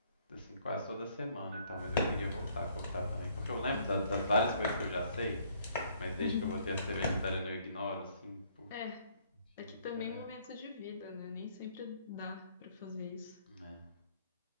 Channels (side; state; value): both; inverted; correlation -0.65